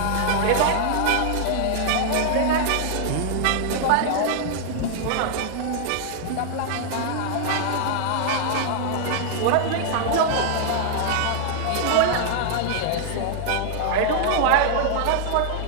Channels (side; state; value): both; different; correlation -0.01